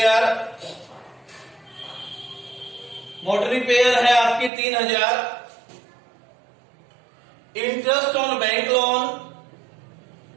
Motor repair है आपकी 3,000। Interest on bank loan,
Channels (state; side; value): drops out; left; at 4.5 s